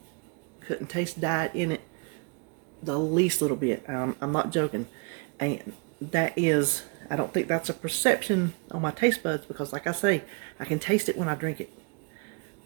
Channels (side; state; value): left; quieter; 34.0 dB